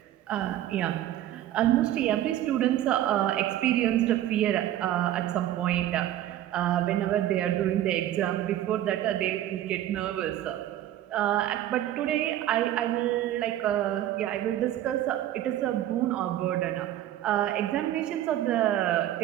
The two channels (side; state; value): left; quieter; 12.7 dB